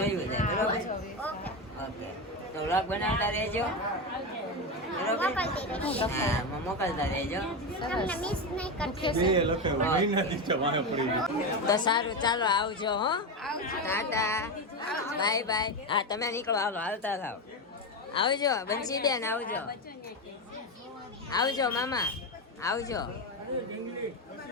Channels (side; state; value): both; normal; correlation 0.14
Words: છે બરોબર. ઓકે ઓકે તો વ્લોગ બનાવતા રહેજો બરોબર. મોકલતી રહીશ હા મોકલતા રહેજો. તમને મિસ નહીં કરતી તો સારું ચાલો આવજો હો. Tata bye bye. હા તમે નીકળો હાલો હાલતા થાવ. આવજો બંસીબેન આવજો. આવજો મામા આવજો.